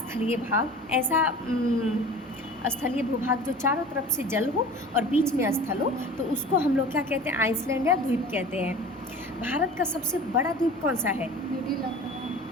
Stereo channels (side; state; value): both; normal; correlation 0.40